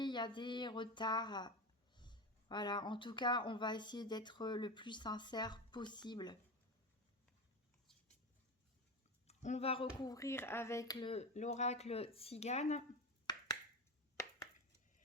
il y a des retards. Voilà, en tout cas, on va essayer d'être le plus sincère possible. On va recouvrir avec l'oracle Tzigane.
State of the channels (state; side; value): normal; both; correlation 0.22